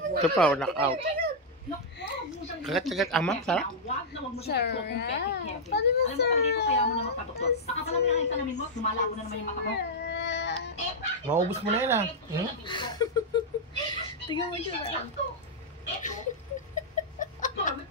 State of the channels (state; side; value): normal; both; correlation -0.05